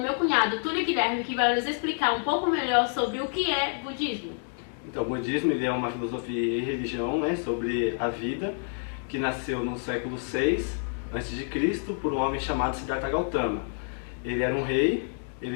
meu cunhado Túlio Guilherme, que vai nos explicar um pouco melhor sobre o que é budismo. Então, o budismo ele é uma filosofia e religião, sobre a vida, que nasceu no século VI a.C. por um homem chamado Siddhartha Gautama. Ele era um rei,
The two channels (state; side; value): silent; right; 59 dB below the other